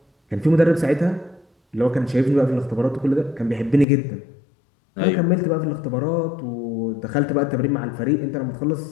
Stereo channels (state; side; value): drops out; right; at 3.9 s